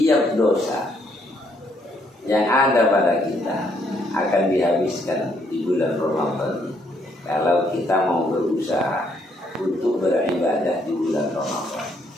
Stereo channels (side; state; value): both; normal; correlation 0.70